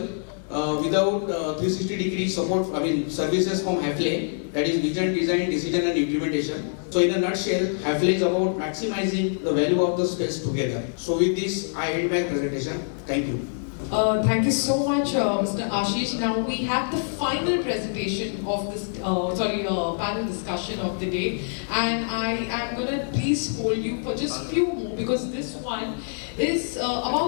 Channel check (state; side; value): silent; right; digital silence